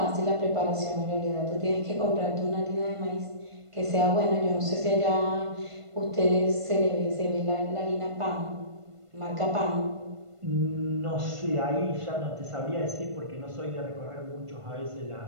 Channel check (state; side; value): late; left; 1.5 ms